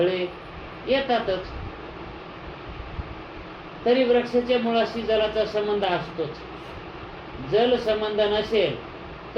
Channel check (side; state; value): both; identical; correlation 1.00